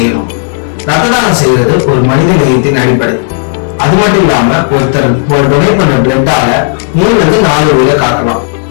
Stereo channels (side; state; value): right; silent; digital silence